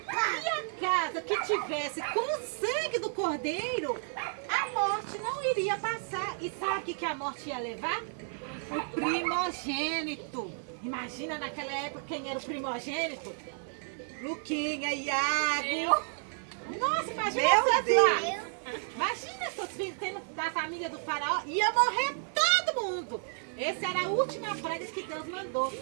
a casa que tivesse com o sangue do cordeiro, a morte não iria passar. E sabe o que a morte ia levar? O primogênito. Imagina naquela época quem era o primogênito? Luquinha, Iago. Nossa, imagina vocês lá. Imagina seus filhos tendo da família do Faraó. Ia morrer todo mundo. Essa era a última praga que Deus mandou.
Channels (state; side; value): silent; left; 57 dB below the other